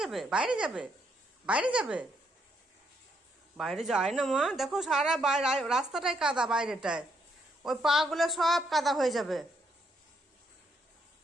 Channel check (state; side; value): normal; both; correlation 0.75